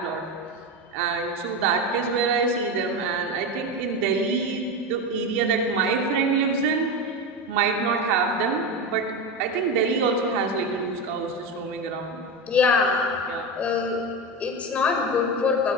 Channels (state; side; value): normal; both; correlation 0.18